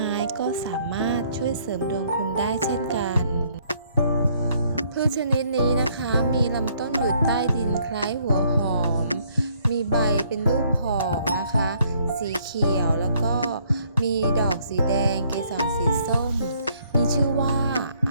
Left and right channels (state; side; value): inverted; both; correlation -0.66